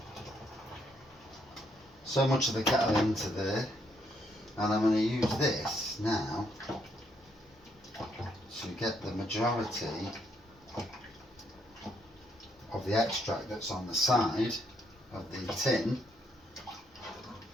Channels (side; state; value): both; normal; correlation 0.73